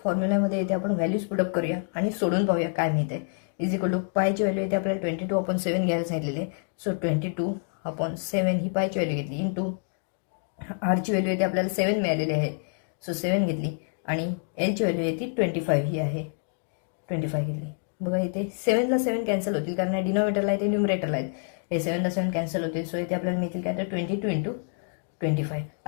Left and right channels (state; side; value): silent; right; 60 dB below the other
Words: फॉर्म्युल्यामध्ये इथे आपण व्हॅल्यूज पुटअप करूया आणि सोडून पाहूया काय मिळते. इज इक्वल टू पायची व्हॅल्यू इथे आपल्याला 22/7 घ्यायला सांगितलेली आहे. सो 22/7 ही पायची व्हॅल्यू घेतली इंटू आरची व्हॅल्यू इथे आपल्याला 7 मिळालेली आहे. सो 7 घेतली आणि एलची व्हॅल्यू आहे ती 25 ही आहे. 25 घेतली. बघा इथे 7ला 7 कॅन्सल होतील कारण डिनोमिनेटरला आहे ते न्युमरेटरला आहेत. हे 7ला 7 कॅन्सल होतील. सो इथे आपल्याला मिळतील काय तर 22 × 25.